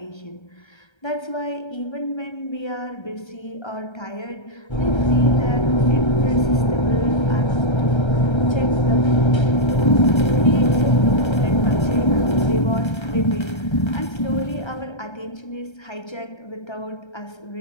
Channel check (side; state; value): right; late; 1.3 ms